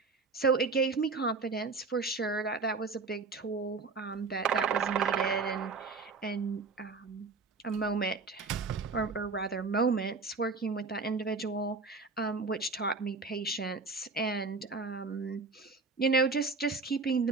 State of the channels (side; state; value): left; quieter; 4.2 dB